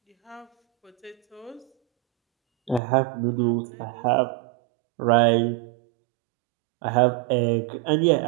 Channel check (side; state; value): left; drops out; at 2.8 s